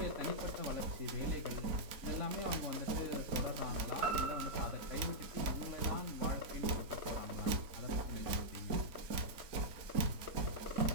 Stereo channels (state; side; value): late; left; 4.2 ms